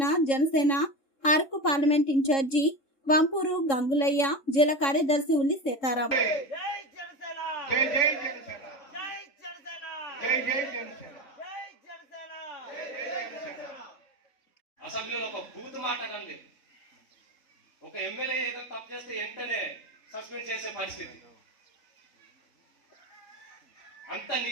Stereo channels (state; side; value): late; right; 3.7 ms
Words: జనసేన అరకు పార్లమెంట్ ఇన్ఛార్జి వంపూరు గంగులయ్య, జిల్లా కార్యదర్శి ఉల్లి సీతారాం. అసెంబ్లీలో ఒక బూత్ మాట్లాడండి, ఒక ఎమ్మెల్యే ఏదో తప్పు చేస్తే వెంటనే సస్పెండ్ చేసే పరిస్థితి. అంత